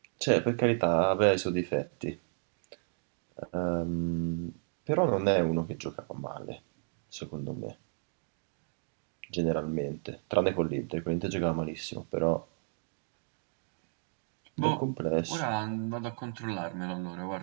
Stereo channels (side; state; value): left; silent; digital silence